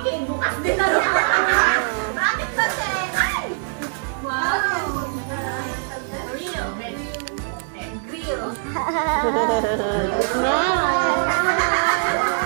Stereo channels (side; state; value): left; silent; digital silence